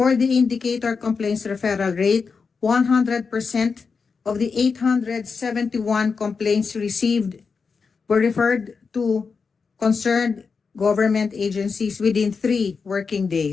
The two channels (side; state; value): right; quieter; 5.2 dB